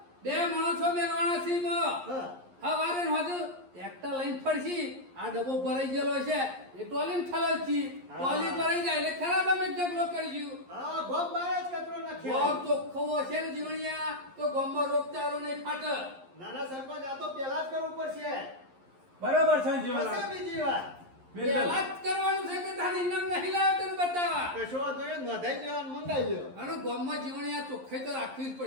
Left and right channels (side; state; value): left; late; 11 ms